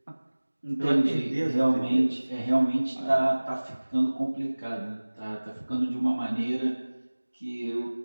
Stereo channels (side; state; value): both; inverted; correlation -1.00